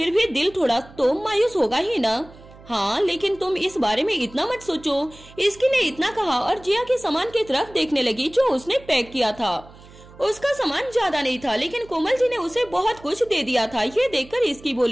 भी दिल थोड़ा तो मायूस होगा ही ना। हाँ, लेकिन तुम इस बारे में इतना मत सोचो। इसकी ने इतना कहा और जिया के सामान की तरफ देखने लगी जो उसने पैक किया था। उसका सामान ज्यादा नहीं था, लेकिन कोमल जी ने उसे बहुत कुछ दे दिया था। ये देखकर इसकी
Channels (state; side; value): noise; right; hum, 22 dB below the sound